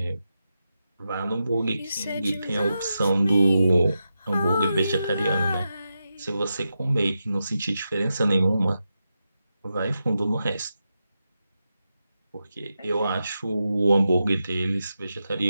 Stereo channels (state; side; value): inverted; both; correlation -0.88